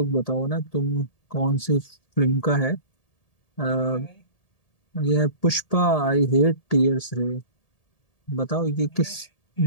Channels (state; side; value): late; right; 1.8 ms